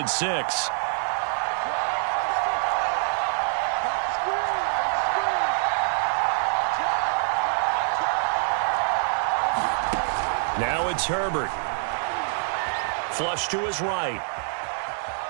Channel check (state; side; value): silent; left; digital silence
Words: 6. Now it's Herbert. Flush to his right.